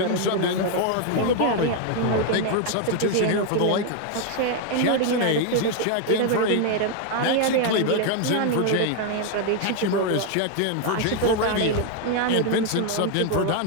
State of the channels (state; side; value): different; both; correlation 0.01